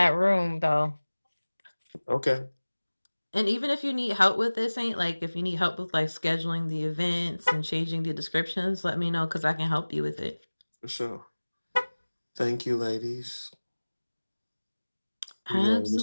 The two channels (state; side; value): inverted; both; correlation -1.00